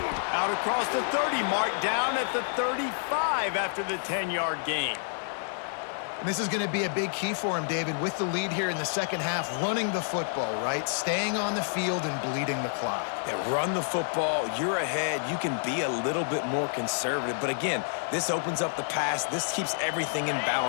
Out across the 30 mark, down at the 35 after the 10-yard gain. This is going to be a big key for him, David, with the lead here in the second half, running the football, right? Staying on the field and bleeding the clock. Yeah, run the football, you're ahead, you can be a little bit more conservative. But again, this opens up the pass. This keeps everything in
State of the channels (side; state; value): right; silent; digital silence